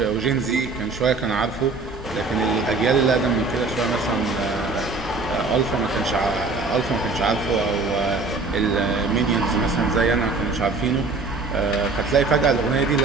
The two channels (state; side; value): quieter; left; 3.8 dB